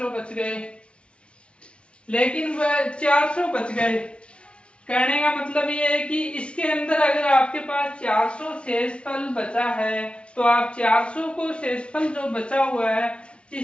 बच गए, लेकिन वह 400 बच गए। कहने का मतलब ये है कि इसके अंदर अगर आपके पास 400 शेषफल बचा है तो आप 400 को शेषफल जो बचा हुआ है,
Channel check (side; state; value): right; late; 0.059 ms